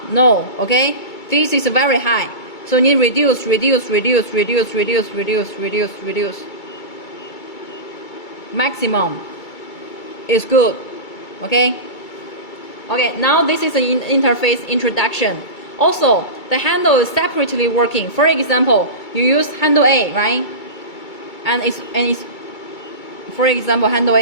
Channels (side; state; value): right; late; 2.3 ms